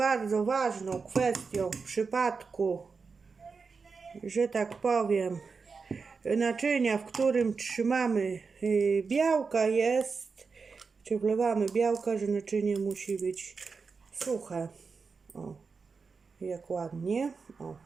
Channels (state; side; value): quieter; left; 4.9 dB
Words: ważną kwestią w przypadku, że tak powiem, naczynia, w którym trzymamy białka, jest, czy wlewamy białka, że naczynie musi być suche. O, jak ładnie. O,